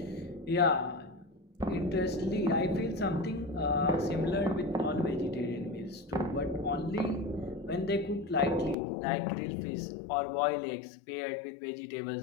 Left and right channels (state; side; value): drops out; right; at 8.8 s